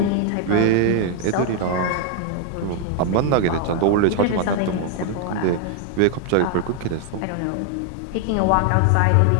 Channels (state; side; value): different; both; correlation 0.00